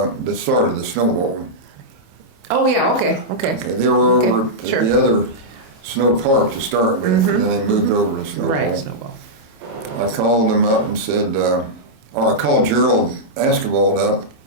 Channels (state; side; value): late; left; 27 ms